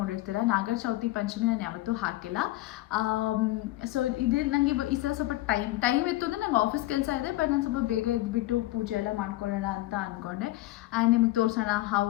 ನಾಗರ ಚೌತಿ ಪಂಚಮಿ ನಾನು ಯಾವತ್ತೂ ಹಾಕಿಲ್ಲ. ಸೊ ಇದೇ ನನಗೆ ಈ ಸಲ ಸ್ವಲ್ಪ ಟೈಮ್ ಇತ್ತು ಅಂದರೆ ನಂಗೆ ಆಫೀಸ್ ಕೆಲಸ ಇದೆ. ಬಟ್ ನಾನು ಸ್ವಲ್ಪ ಬೇಗ ಎದ್ಬಿಟ್ಟು ಪೂಜೆ ಎಲ್ಲ ಮಾಡ್ಕೊಳ್ಳೋಣ ಅಂತ ಅಂದ್ಕೊಂಡೆ. ಆ್ಯಂಡ್ ನಿಮ್ಗೆ ತೋರಿಸೋಣ ಹೌ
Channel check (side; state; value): right; quieter; 17.1 dB